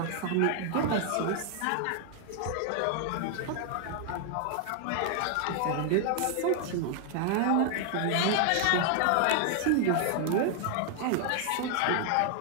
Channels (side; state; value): both; different; correlation 0.00